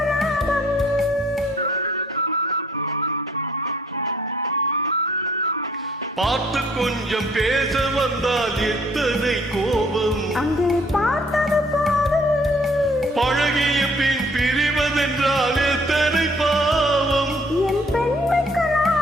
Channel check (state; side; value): normal; both; correlation 0.61